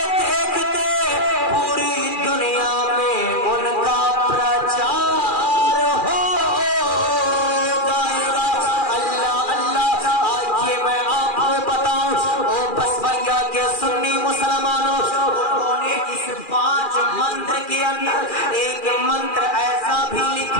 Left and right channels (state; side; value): late; right; 2.4 ms